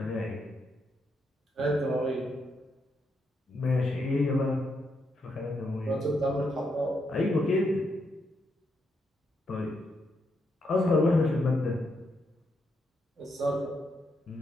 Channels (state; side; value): normal; both; correlation 0.79